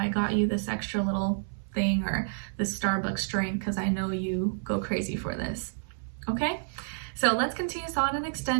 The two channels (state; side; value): silent; left; 58 dB below the other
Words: got you this extra little thing, or this Starbucks drink, because I know you go crazy for this. Okay? So let's continue on and